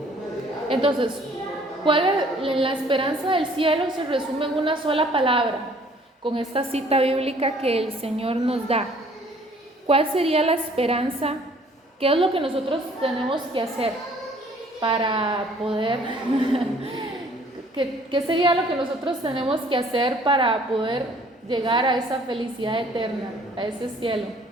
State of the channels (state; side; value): normal; both; correlation 0.57